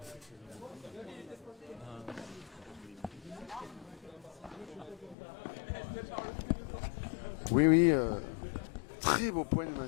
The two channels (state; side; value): drops out; right; at 5.2 s